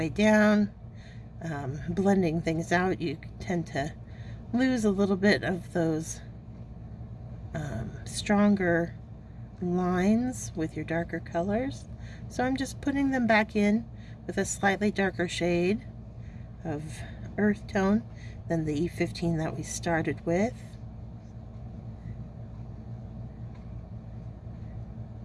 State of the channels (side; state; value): both; identical; correlation 1.00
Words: down, blending things out, you tend to lose a little bit of those stronger lines with your darker colors. So I'm just putting them back in with a slightly darker shade of earth tone than the E15 that we started with.